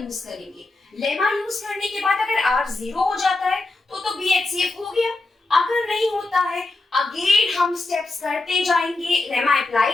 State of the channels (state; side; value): quieter; right; 3.1 dB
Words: करेंगे। लेमा यूज करने के बाद अगर r 0 हो जाता है तो b HCF हो गया, अगर नहीं होता है अगेन हम स्टेप्स करते जाएंगे, लेमा अप्लाई